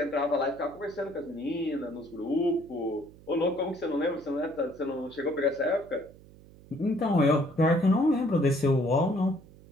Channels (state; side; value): noise; right; hum, 22 dB below the sound